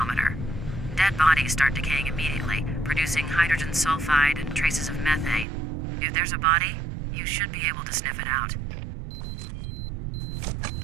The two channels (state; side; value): drops out; left; at 5.5 s